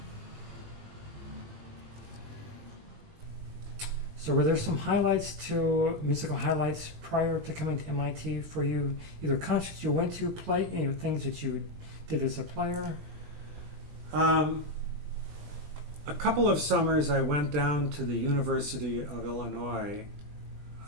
So were there some musical highlights prior to coming to MIT for you? Either concerts you went to, things that you did as a player? A couple of summers I went down to the University of Illinois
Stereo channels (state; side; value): late; left; 20 ms